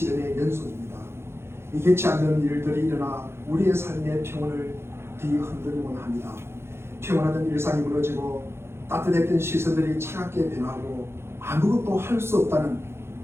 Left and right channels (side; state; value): left; late; 0.12 ms